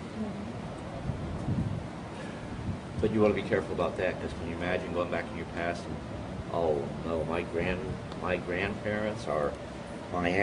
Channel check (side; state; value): both; identical; correlation 1.00